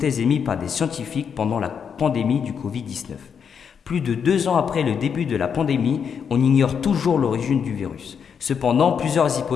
émises par des scientifiques pendant la pandémie du Covid-19. Plus de 2 ans après le début de la pandémie, on ignore toujours l'origine du virus. Cependant, plusieurs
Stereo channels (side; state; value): right; quieter; 7.0 dB